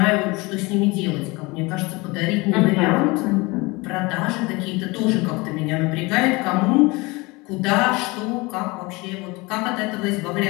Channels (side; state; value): right; quieter; 24.4 dB